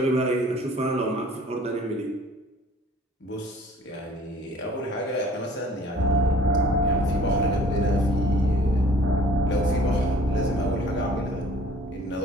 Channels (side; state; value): both; normal; correlation 0.52